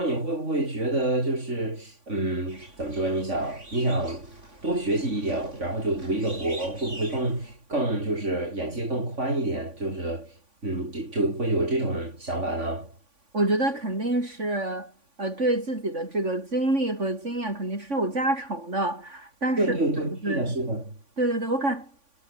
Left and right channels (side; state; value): left; late; 3.5 ms